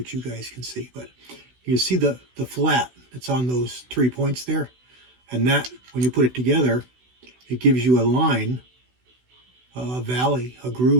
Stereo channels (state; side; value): late; left; 16 ms